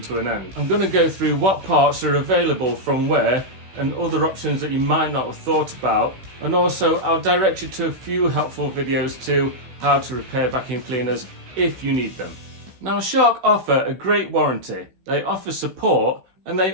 to an end. I'm going to go through what parts are available from where and other options that you might not have thought about, and also I'll direct you to a few helpful videos to how to repair vacuum cleaners if you need them. Now Shark offer a great warranty, they offer support, and they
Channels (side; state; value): left; late; 16 ms